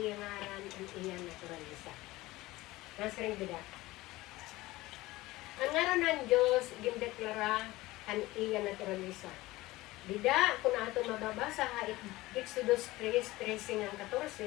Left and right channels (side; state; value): right; quieter; 18.9 dB